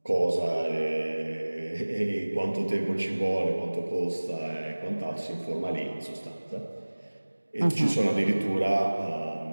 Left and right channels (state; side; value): inverted; both; correlation -1.00